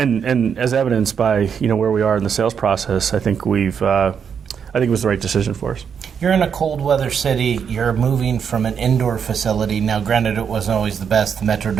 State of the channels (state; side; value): quieter; left; 7.2 dB